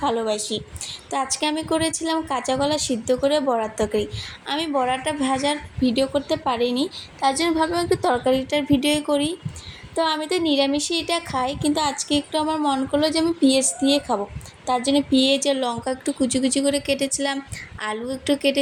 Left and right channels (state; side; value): identical; both; correlation 1.00